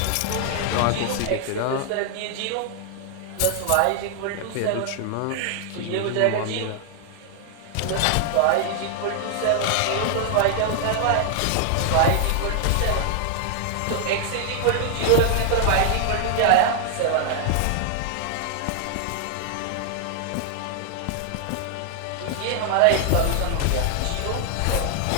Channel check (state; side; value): different; both; correlation 0.00